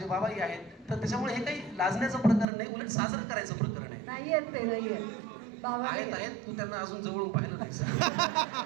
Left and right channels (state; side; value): drops out; left; at 2.5 s